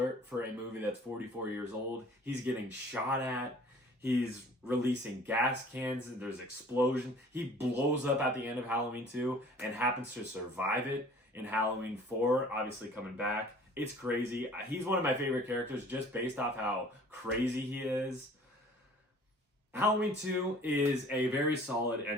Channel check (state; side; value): normal; both; correlation 0.50